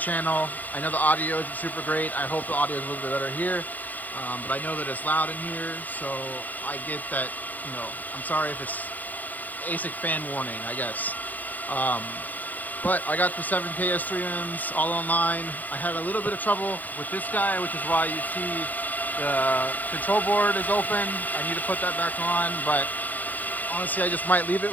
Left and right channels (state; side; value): late; right; 0.082 ms